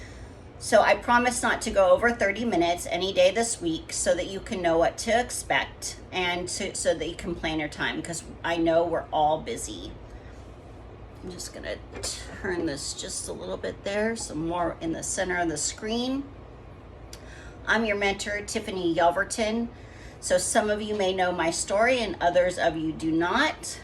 So I promise not to go over 30 minutes any day this week so that you can know what to expect and so that you can plan your time, because I know we're all busy. I'm just gonna turn this just a little bit there, some more in the center of the screen. I'm your mentor, Tiffany Yelverton. So some of you may know my story and others of you do not.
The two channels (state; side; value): identical; both; correlation 1.00